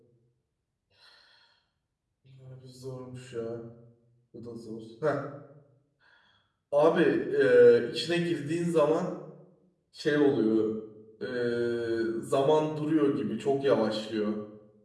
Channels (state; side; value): identical; both; correlation 1.00